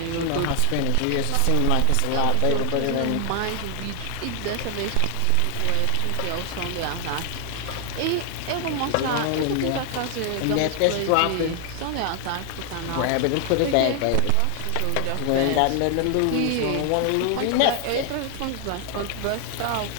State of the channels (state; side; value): different; both; correlation 0.00